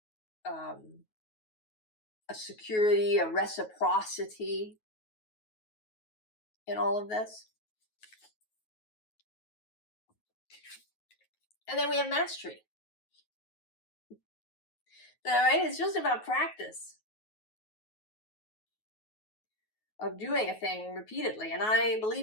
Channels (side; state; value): right; late; 9.4 ms